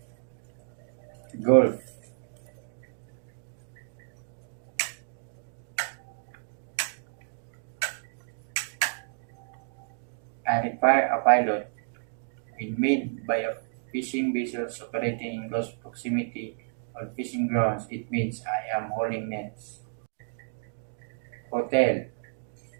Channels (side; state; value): left; silent; digital silence